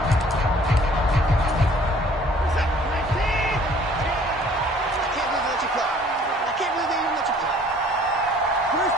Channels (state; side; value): normal; both; correlation 0.55